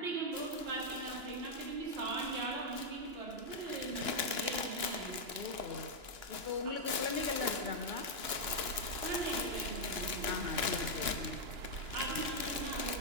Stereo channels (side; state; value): left; late; 2.9 ms